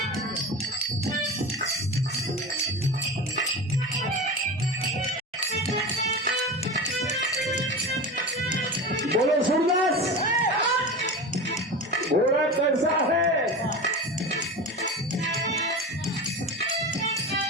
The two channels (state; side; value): normal; both; correlation 0.28